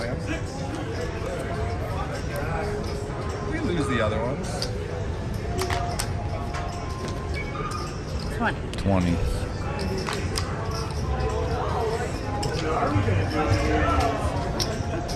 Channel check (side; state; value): both; identical; correlation 1.00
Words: hand. We lose the other ones. 20. 20.